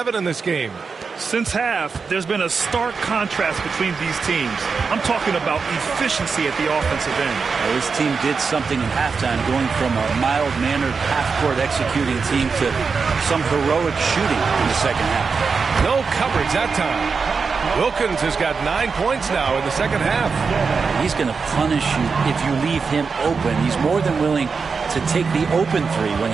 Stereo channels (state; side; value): quieter; left; 5.1 dB